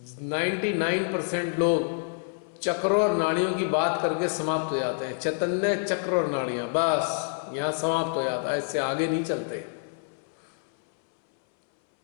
99% लोग चक्रों और नाड़ियों की बात करके समाप्त हो जाते हैं। चैतन्य, चक्र और नाड़ियां, बस यहां समाप्त हो जाता है, इससे आगे नहीं चलते।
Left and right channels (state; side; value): silent; right; 60 dB below the other